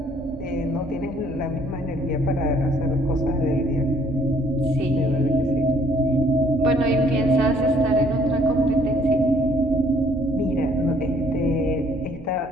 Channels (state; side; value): normal; both; correlation 0.62